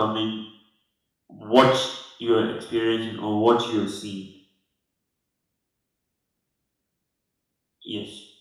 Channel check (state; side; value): identical; both; correlation 1.00